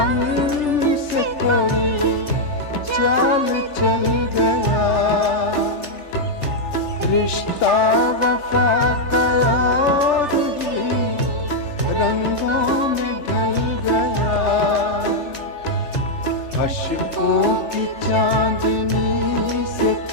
कोई चाल चल गया, रिश्ता वफा का और भी रंगों में ढल गया। अश्कों की चांदनी से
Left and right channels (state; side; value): late; right; 3.3 ms